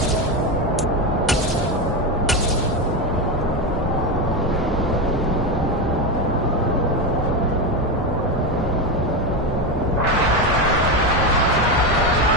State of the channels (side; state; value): both; normal; correlation 0.13